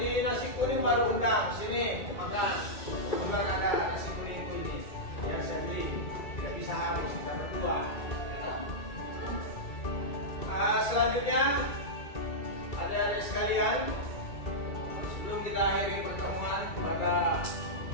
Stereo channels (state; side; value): late; right; 2.3 ms